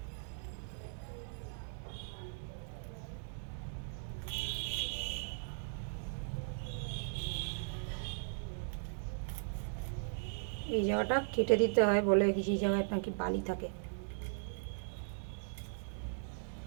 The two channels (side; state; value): left; silent; digital silence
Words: এই জায়গাটা কেটে দিতে হয়, বলে কিছু জায়গায় নাকি বালি থাকে।